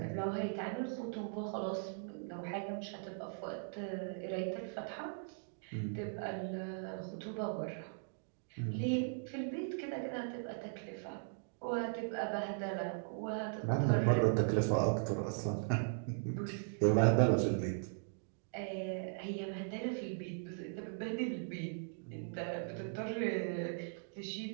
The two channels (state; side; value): silent; left; digital silence